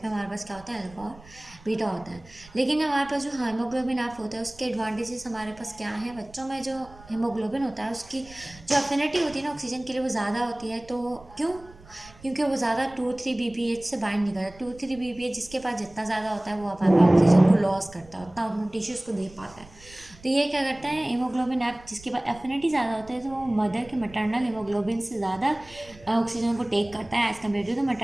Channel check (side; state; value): right; noise; rumble, 22 dB below the sound